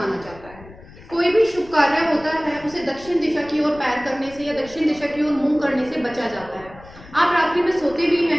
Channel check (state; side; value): noise; left; rumble, 20 dB below the sound